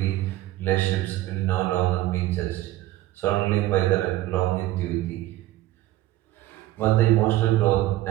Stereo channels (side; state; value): left; quieter; 15.9 dB